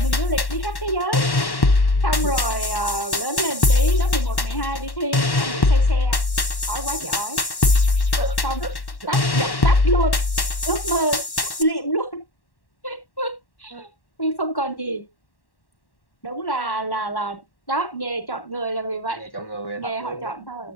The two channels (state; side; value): late; right; 1.1 ms